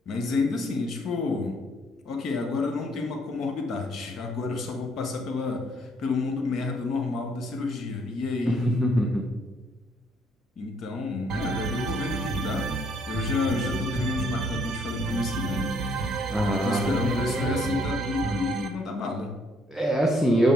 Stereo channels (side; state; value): both; normal; correlation 0.67